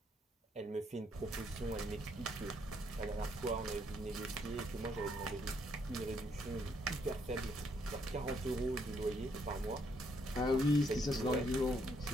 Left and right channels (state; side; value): normal; both; correlation 0.72